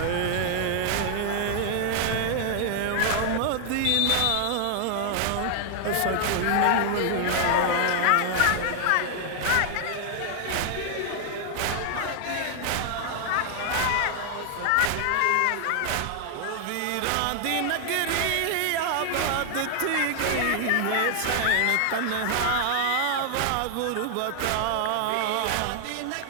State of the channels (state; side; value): different; both; correlation 0.00